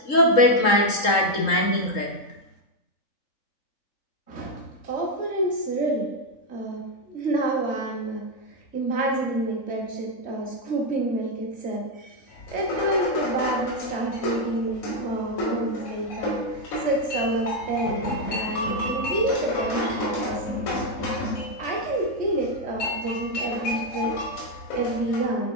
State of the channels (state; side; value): late; right; 3.7 ms